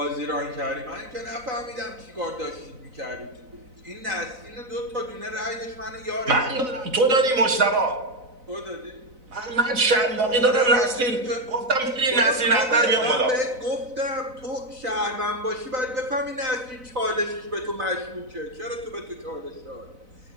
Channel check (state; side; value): late; left; 4.0 ms